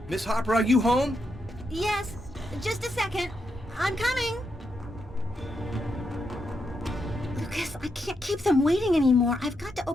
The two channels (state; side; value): normal; both; correlation 0.83